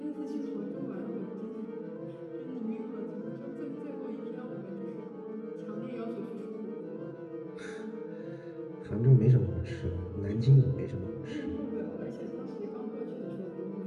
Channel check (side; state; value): both; identical; correlation 1.00